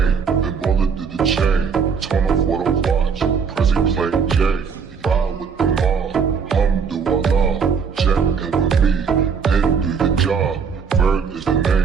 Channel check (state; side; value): quieter; left; 6.0 dB